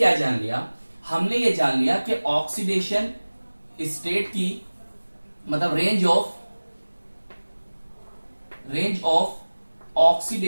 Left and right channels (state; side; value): inverted; both; correlation -1.00